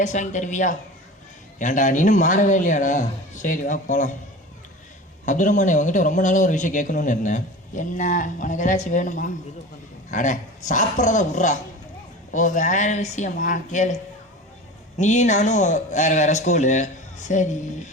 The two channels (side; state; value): both; normal; correlation 0.34